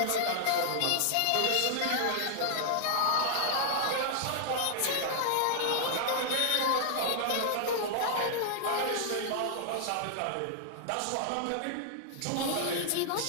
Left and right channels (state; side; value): different; both; correlation 0.00